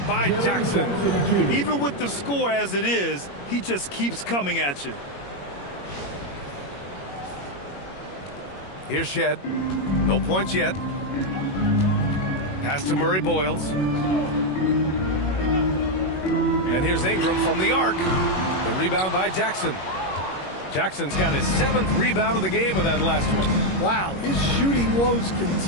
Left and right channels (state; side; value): late; right; 21 ms